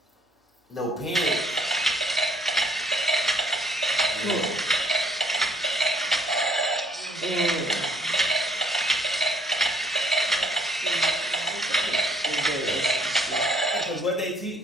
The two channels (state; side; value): normal; both; correlation 0.63